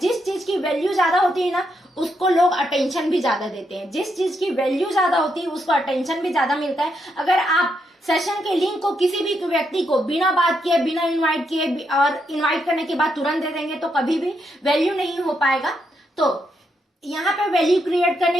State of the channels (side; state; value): both; normal; correlation 0.80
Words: चीज की वैल्यू ज्यादा होती है ना, उसको लोग अटेंशन भी ज्यादा देते हैं। जिस चीज की वैल्यू ज्यादा होती है उसको अटेंशन भी ज्यादा मिलता है। अगर आप सेशन के लिंक को किसी भी व्यक्ति को बिना बात किए, बिना इन्वाइट किए और इन्वाइट करने के बाद तुरंत दे देंगे, तो कभी भी वैल्यू नहीं हो पाएगा। तो यहाँ पे वैल्यू क्रिएट